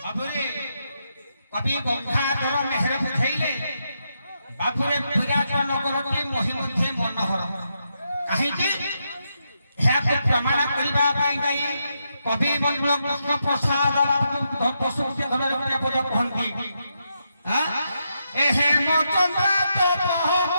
বাবুরে কবি গঙ্গাধর মেহর বুঝাইলে বাবুরে বিরাট নগরটি মহিমধ্যে মনোহর কাহিଁକି ଏହାକୁ ପ୍ରମାଣ କରିବା ପାଇଁ ଯାଇ କବି ବନ୍ଧୁ କୃଷ୍ଣ ପ୍ରସାଦ ପଶୁପତି ଧର୍ମରେ କହନ୍ତି ଏ ହେମଚନ୍ଦ୍ର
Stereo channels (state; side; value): inverted; both; correlation -0.82